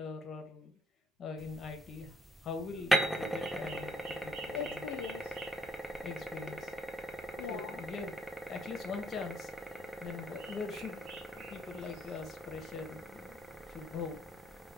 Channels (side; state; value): both; normal; correlation 0.68